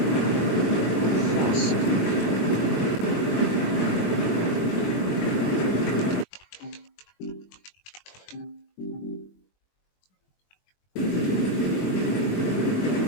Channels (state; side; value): late; right; 21 ms